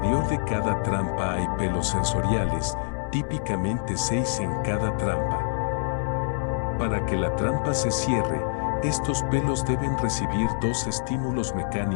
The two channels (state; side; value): silent; right; 61 dB below the other